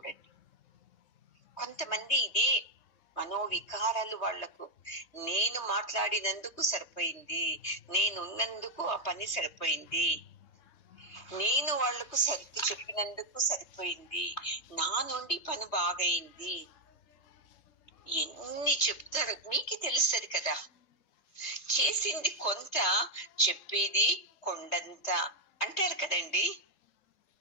కొంతమంది ఇదే మనోవికారాలు వాళ్లకు. నేను మాట్లాడినందుకు సరిపోయింది, నేనున్నందుకు ఆ పని సరిపోయింది, నేను వాళ్లకు సర్ది చెప్పినందుకు సరిపోయింది, నా నుండి పని బాగైంది, ఎన్ని చెప్తారు మీకు తెలుస్తుంది కదా. చేసింది కొంత, చెప్పేది కొండంత అంటారు కదండి.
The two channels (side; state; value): right; late; 3.2 ms